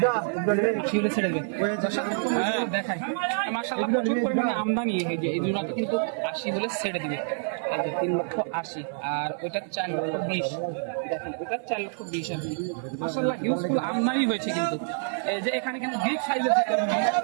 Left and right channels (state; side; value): silent; left; digital silence